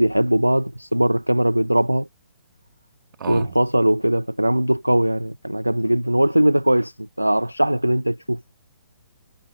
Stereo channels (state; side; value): inverted; both; correlation -1.00